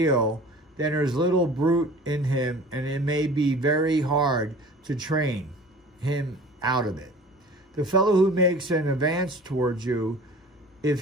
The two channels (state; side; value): normal; both; correlation 0.43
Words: then there's little brute in him, and it may be very hard to train him out of it. The fellow who makes an advance towards you, if